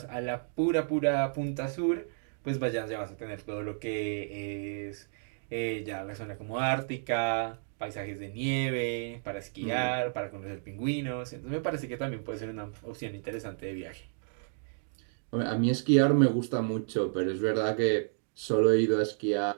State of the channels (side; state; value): left; silent; digital silence